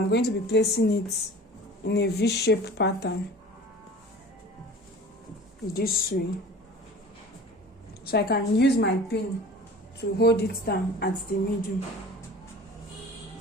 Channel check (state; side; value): normal; both; correlation 0.42